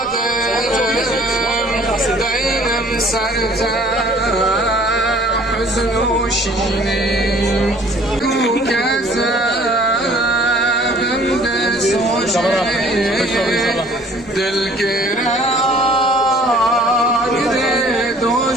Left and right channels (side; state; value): both; normal; correlation 0.54